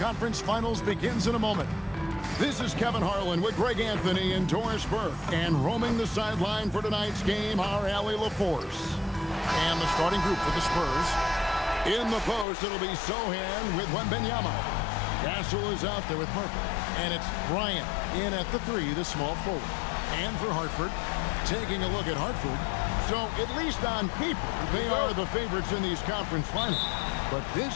Finals begins in a moment. This is Kevin Harlan with Greg Anthony and Doris Burke. And roaming the sideline for tonight's game are Allie LaForce. And the starting group for the Spurs. In the post, it'll be Sohan with Wembanyama. Castle is out there with Harper. And it's Bryant in at the 3, the small forward. And for Hartford, taking a look at Hartford. So, at least on paper, they are the favorites in these conference finals. But this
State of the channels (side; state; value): right; drops out; at 12.5 s